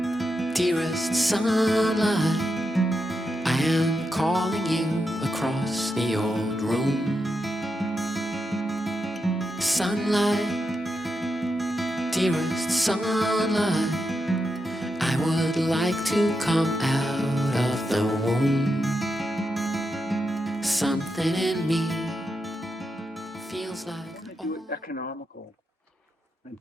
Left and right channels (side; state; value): both; normal; correlation 0.86